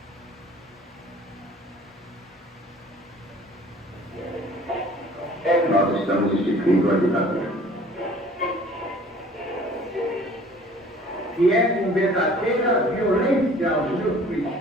Nós estamos instituindo a ditadura, que é com verdadeira violência aos meus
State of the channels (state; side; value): normal; both; correlation 0.50